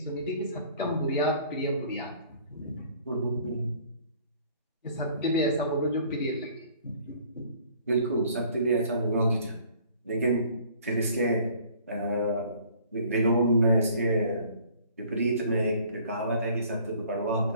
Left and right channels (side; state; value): both; inverted; correlation -0.55